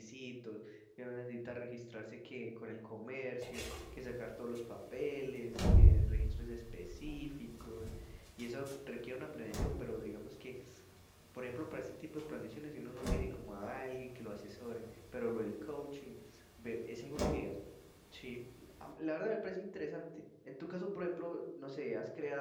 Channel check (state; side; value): identical; both; correlation 1.00